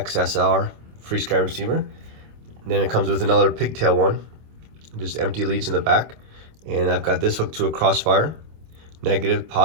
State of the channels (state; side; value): late; left; 26 ms